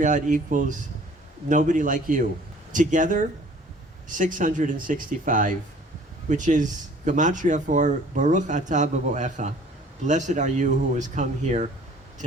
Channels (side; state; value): both; normal; correlation 0.52